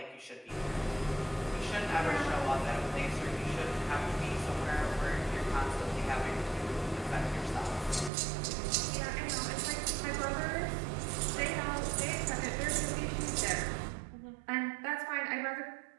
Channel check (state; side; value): drops out; left; at 8.1 s